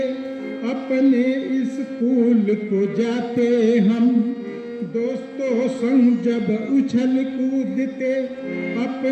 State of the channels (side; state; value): both; identical; correlation 1.00